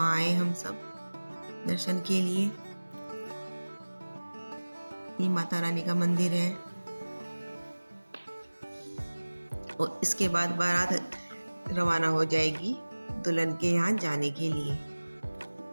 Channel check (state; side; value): inverted; both; correlation -1.00